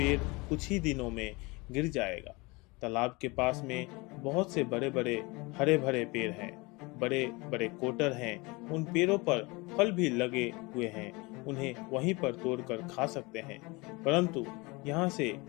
कुछ ही दिनों में गिर जाएगा। तालाब के पास में बहुत से बड़े बड़े हरे भरे पेड़ हैं, बड़े बड़े कोटर हैं, उन पेड़ों पर फल भी लगे हुए हैं, उन्हें वहीं पर तोड़कर खा सकते हैं, परंतु यहाँ से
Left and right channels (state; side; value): quieter; right; 25.4 dB